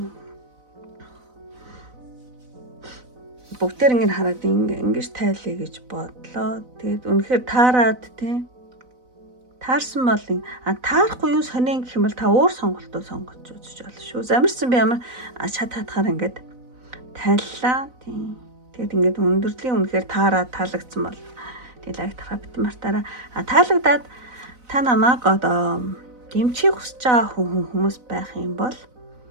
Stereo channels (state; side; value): late; left; 4.0 ms